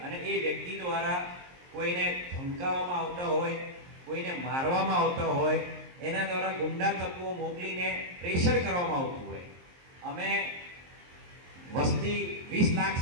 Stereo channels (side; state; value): left; late; 23 ms